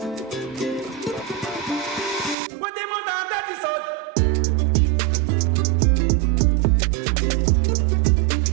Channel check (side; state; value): left; drops out; at 2.4 s